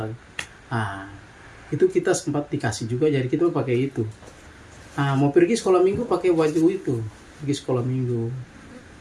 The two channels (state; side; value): identical; both; correlation 1.00